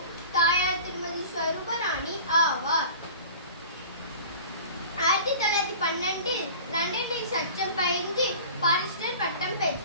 தாயார் திருமதி ஸ்வரூபராணி ஆவார். 1912 லண்டனில் சட்டம் பயின்று பாரிஸ்டர் பட்டம்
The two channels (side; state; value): both; inverted; correlation -0.40